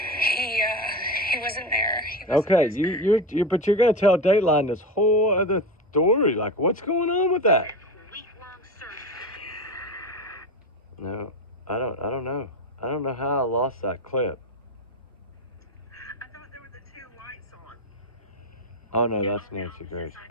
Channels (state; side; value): normal; both; correlation 0.22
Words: he wasn't there. Okay, you but you're gonna tell Dateline this whole other story. Like, what's going on with that? No, I don't know. I don't know how I lost that clip. I thought there were the two lights on. Oh no, that's Nancy Grace.